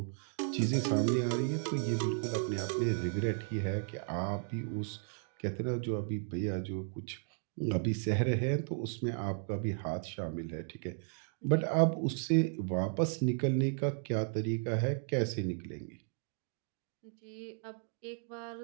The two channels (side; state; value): left; silent; 55 dB below the other